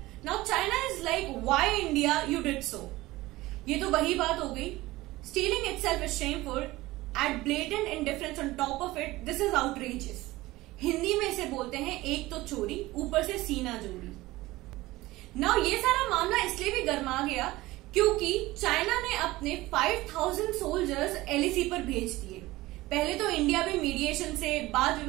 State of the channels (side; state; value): left; quieter; 18.7 dB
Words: Now China is like why India you did so. ये तो वही बात हो गई, stealing itself is shameful, at blatant indifference on top of it, this is outrageous. Hindi में इसे बोलते हैं एक तो चोरी ऊपर से सीना जोड़ी। नाउ ये सारा मामला इसलिए भी गर्मा गया क्योंकि चाइना ने अपने 5000 सोल्जर्स एलएसी पर भेज दिए। पहले तो इंडिया भी मीडिएशन से, वाद